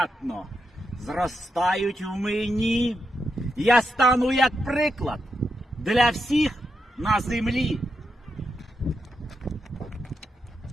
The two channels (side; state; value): both; normal; correlation 0.85